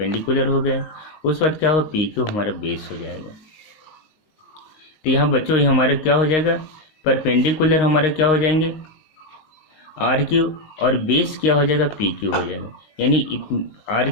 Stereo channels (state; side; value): late; right; 19 ms